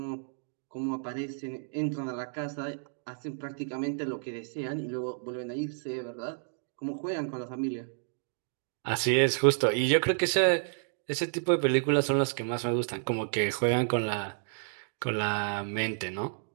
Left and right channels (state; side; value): silent; left; digital silence